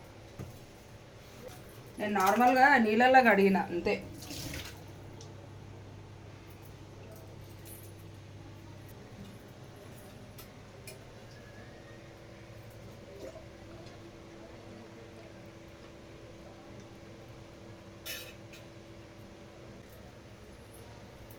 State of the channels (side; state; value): both; identical; correlation 1.00